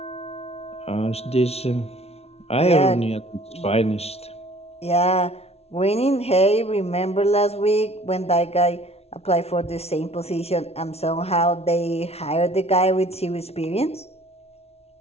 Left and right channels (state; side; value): late; right; 0.30 ms